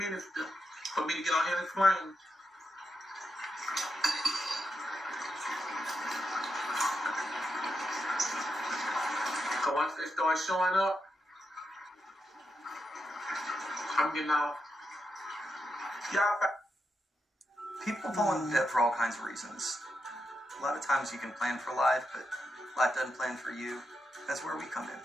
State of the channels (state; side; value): normal; both; correlation 0.85